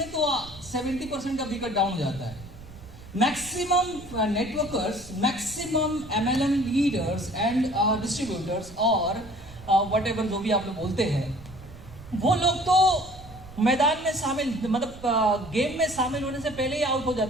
तो 70% का विकेट डाउन हो जाता है। Maximum networkers, maximum MLM leaders and distributors और वट एवर जो भी आप लोग बोलते हैं, वो लोग तो मैदान में शामिल, मतलब गेम में शामिल होने से पहले ही आउट हो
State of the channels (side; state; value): right; noise; rumble, 18 dB below the sound